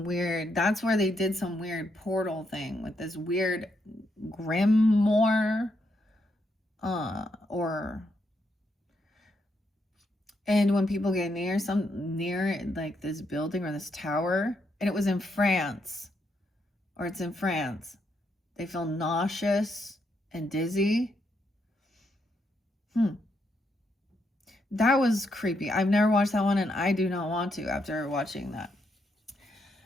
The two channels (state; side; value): normal; both; correlation 0.78